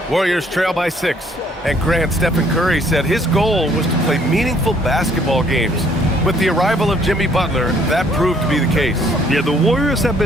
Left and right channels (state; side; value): normal; both; correlation 0.63